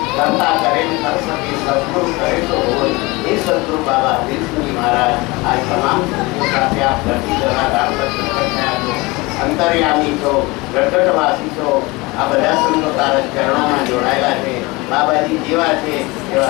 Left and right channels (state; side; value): quieter; right; 23.6 dB